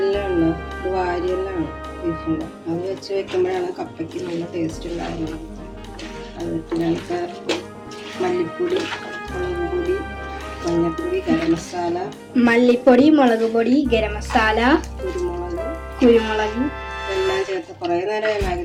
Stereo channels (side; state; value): both; identical; correlation 1.00